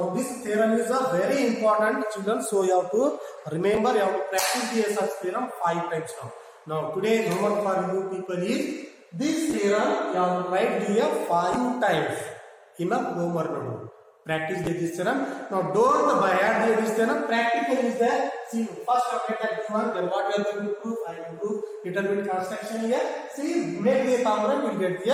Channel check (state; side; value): identical; both; correlation 1.00